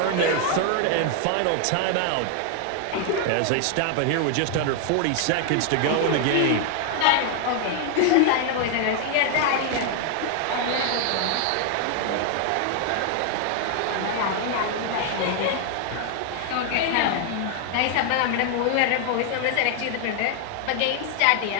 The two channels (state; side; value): different; both; correlation 0.00